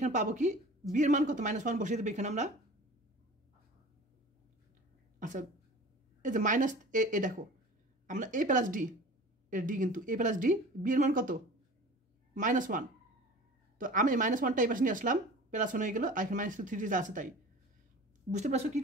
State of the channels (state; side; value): normal; both; correlation 0.40